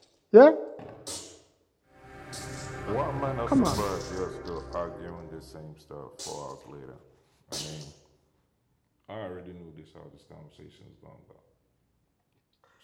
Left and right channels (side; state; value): both; identical; correlation 1.00